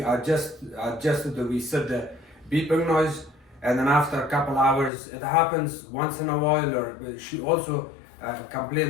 adjust it to reset the beeping noise, and then after a couple hours, it happens once in a while. Or she also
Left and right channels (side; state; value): right; drops out; at 4.9 s